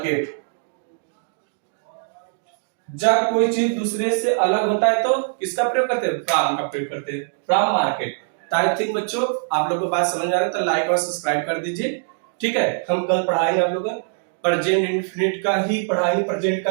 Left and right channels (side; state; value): left; silent; digital silence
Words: जब कोई चीज दूसरे से अलग होता है तो किसका प्रयोग करते हैं, फ्रॉम का प्रयोग करते हैं, फ्रॉम मार्केट। आई थिंक बच्चों आप लोगों को बात समझ आ रहा है तो लाइक और सब्सक्राइब कर दीजिए। ठीक है, हम कल पढ़ाएंगे आप लोगों को प्रेजेंट इंडेफिनिट का ही पढ़ाएंगे, प्रेजेंट